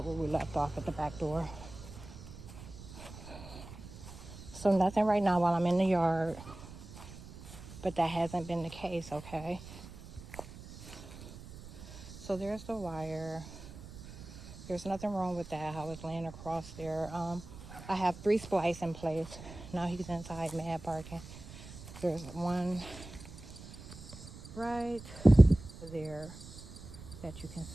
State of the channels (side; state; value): right; noise; rumble, 15 dB below the sound